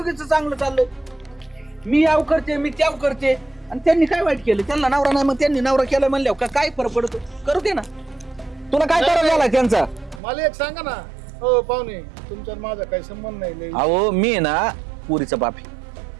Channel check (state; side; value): drops out; left; at 10.2 s